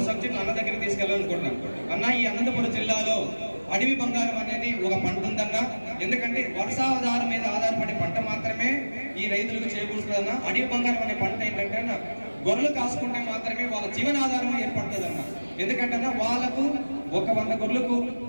సబ్జెక్టులు అన్న దగ్గరికి తీసుకెళ్ళాలనుకుంటున్నాను. అన్న, ఈ అనంతపురం జిల్లాలో అడవి బంగారం అనేది ఒక పంట ఉందన్న. ఎందుకంటే వర్షాధారం మీద ఆధారపడే పంట మాత్రమే ఈ రైతులకు చేకూరుతుందన్న. అడవి బంగారం అనే పంట ఏంటంటే అన్న, గొర్రెలు కాసుకుంటే మాత్రమే వాళ్ళ జీవనాధారం ఏర్పడుతుందన్న. ఎందుకంటే అన్న, వాళ్ళకు ఒక 100 గొర్రెలకు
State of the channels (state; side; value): inverted; both; correlation -1.00